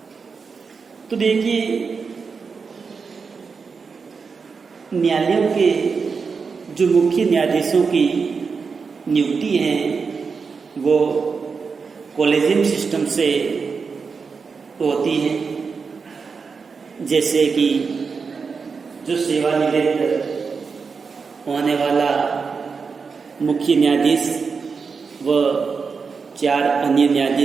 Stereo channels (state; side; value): quieter; left; 5.2 dB